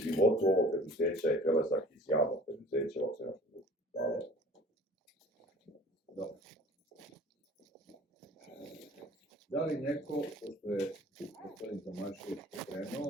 ovog preduzeća je prelazak iz javnog preduzeća u akcionarsko društvo. Hvala. Dobro. Da li neko, pošto je gospodin Tomašević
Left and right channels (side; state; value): both; normal; correlation 0.47